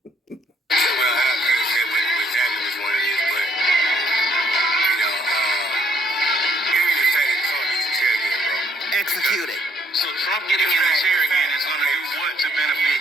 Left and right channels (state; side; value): normal; both; correlation 0.67